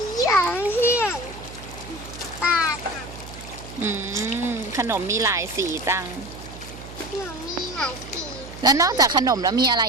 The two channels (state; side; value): noise; right; hum, 15 dB below the sound